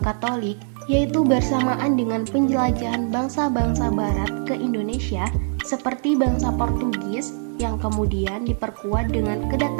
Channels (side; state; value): left; silent; 64 dB below the other